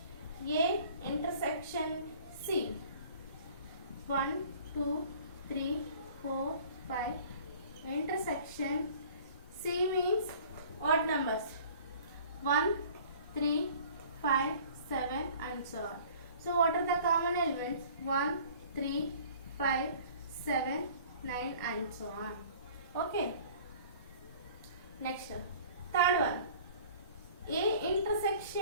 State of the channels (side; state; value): both; inverted; correlation -0.49